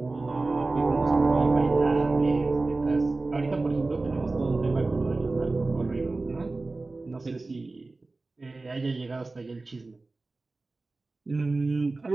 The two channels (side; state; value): left; quieter; 3.4 dB